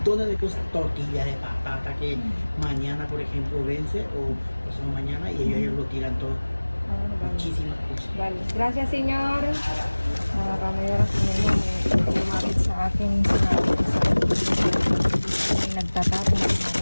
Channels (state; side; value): inverted; both; correlation -1.00